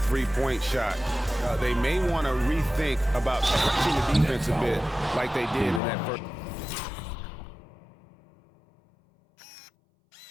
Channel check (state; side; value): drops out; right; at 5.8 s